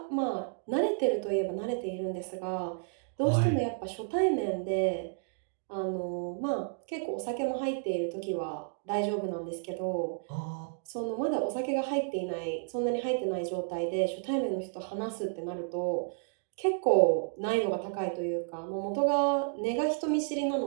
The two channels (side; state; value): left; silent; digital silence